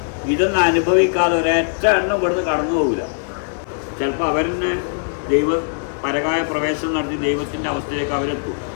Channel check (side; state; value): right; silent; 62 dB below the other